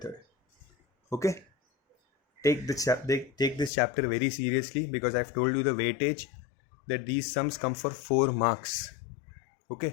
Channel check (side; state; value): right; drops out; at 3.7 s